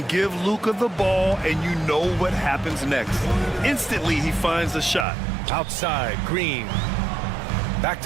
give Luka the ball, and you know what happens next. Instantly, he finds the shot. Outside, Green. Back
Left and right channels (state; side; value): drops out; left; at 5.1 s